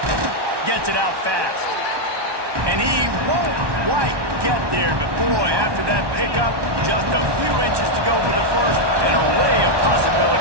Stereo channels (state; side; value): late; left; 1.2 ms